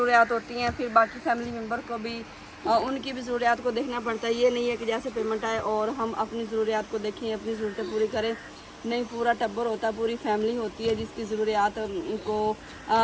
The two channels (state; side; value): identical; both; correlation 1.00